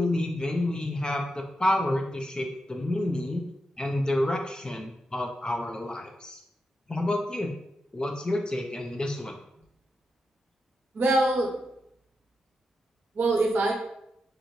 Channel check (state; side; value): normal; both; correlation 0.87